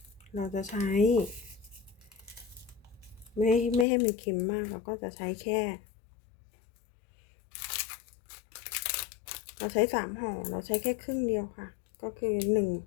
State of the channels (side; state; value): right; drops out; at 3.9 s